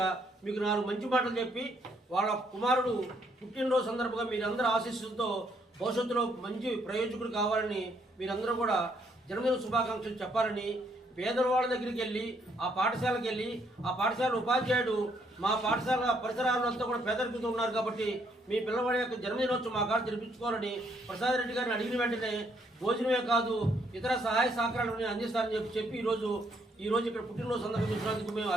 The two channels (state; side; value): normal; both; correlation 0.71